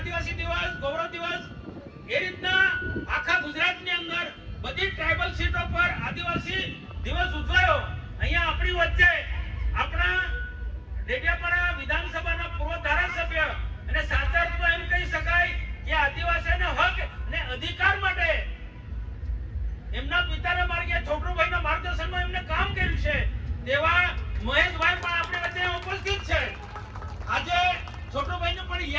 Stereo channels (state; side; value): identical; both; correlation 1.00